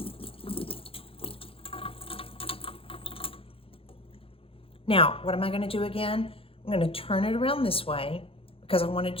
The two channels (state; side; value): late; right; 0.27 ms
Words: Now, what am I going to do again? I'm going to turn it around this way, because I want it